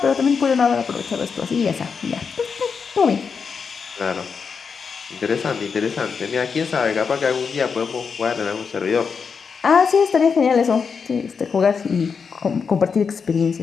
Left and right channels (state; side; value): quieter; right; 5.8 dB